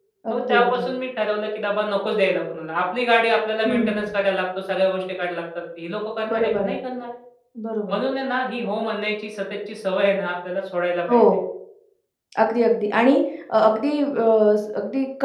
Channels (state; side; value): identical; both; correlation 1.00